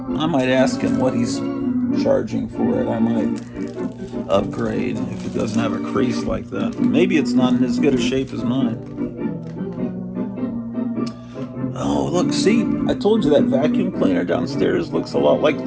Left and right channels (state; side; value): identical; both; correlation 1.00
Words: I might ask him what he's charging for it. I might upgrade if it doesn't have a crease like that. Maybe it's not in as good a shape as mine. Oh, look, see, I told you that vacuum cleaner downstairs looks a lot like